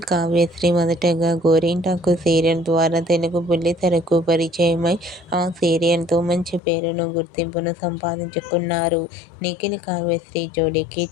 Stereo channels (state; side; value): drops out; right; at 6.6 s